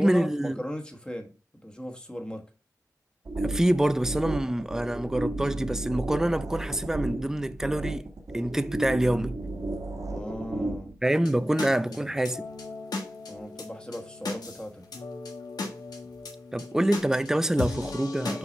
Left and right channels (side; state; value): both; normal; correlation 0.95